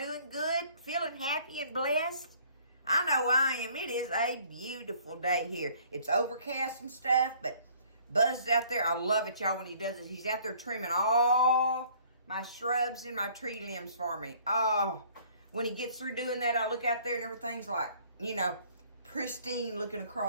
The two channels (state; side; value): inverted; both; correlation -0.57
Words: good? Feeling happy and blessed? I know I am. It is a beautiful day here. It's overcast and stuff, but Buzz is out there. I love it, y'all, when he does it. He's out there trimming all my shrubs and my tree limbs for me. Oh, when he gets through doing that, I look out there and everything's like, pristine looking